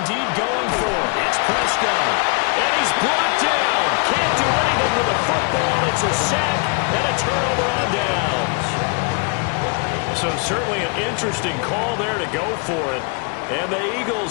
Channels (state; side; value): quieter; right; 35.6 dB